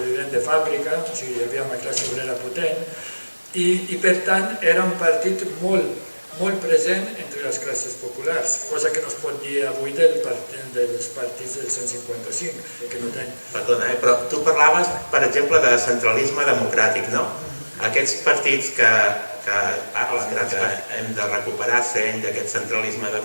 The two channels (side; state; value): both; inverted; correlation -1.00